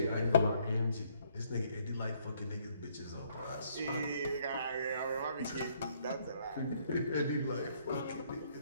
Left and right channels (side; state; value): both; inverted; correlation -0.67